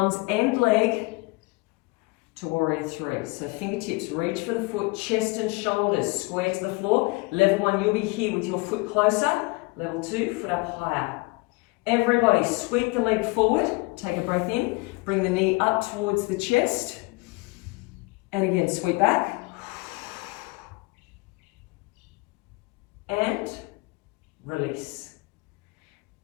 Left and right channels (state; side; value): quieter; right; 25.4 dB